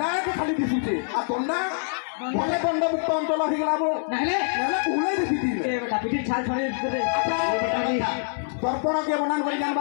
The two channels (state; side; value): silent; right; 62 dB below the other